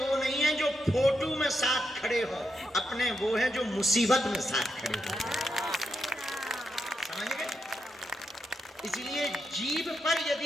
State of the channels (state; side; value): normal; both; correlation 0.83